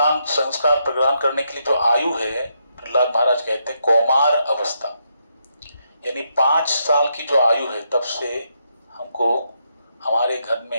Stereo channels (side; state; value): both; inverted; correlation -0.79